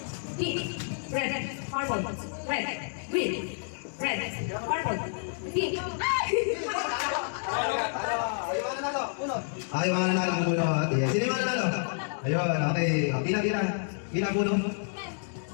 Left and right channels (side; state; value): right; silent; digital silence